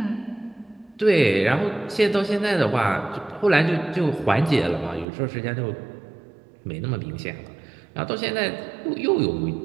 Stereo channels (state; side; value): drops out; left; at 5.1 s